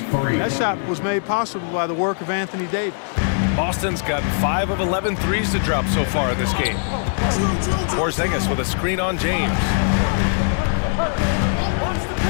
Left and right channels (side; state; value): right; silent; digital silence